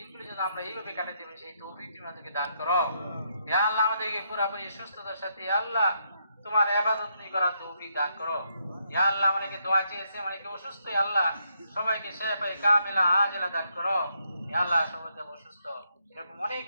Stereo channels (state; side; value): inverted; both; correlation -0.76